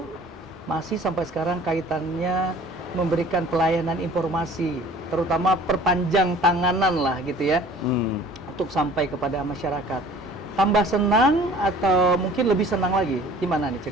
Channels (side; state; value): both; normal; correlation 0.49